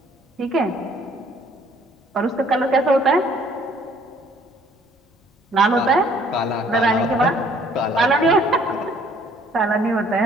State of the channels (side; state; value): both; normal; correlation 0.59